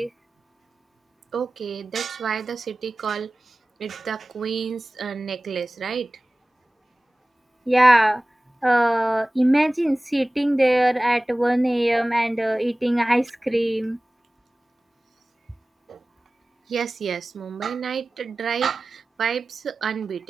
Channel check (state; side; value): normal; both; correlation 0.97